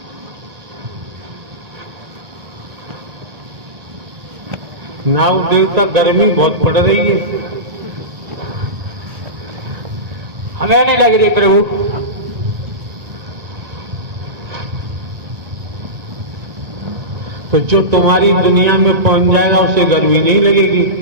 नाग देवता गर्मी बहुत पड़ रही है। हमें नहीं लग रही प्रभु। तो जो तुम्हारी दुनिया में पहुंच जाएगा उसे गर्मी नहीं लगेगी।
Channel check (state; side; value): late; left; 1.9 ms